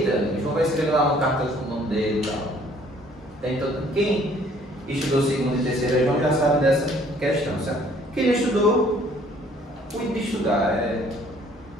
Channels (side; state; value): both; normal; correlation 0.59